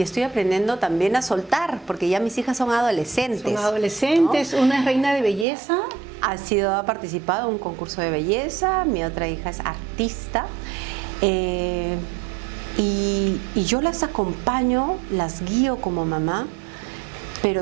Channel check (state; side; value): drops out; left; at 5.5 s